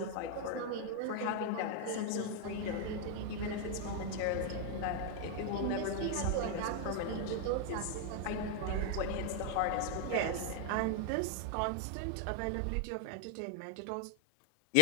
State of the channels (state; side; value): different; both; correlation 0.00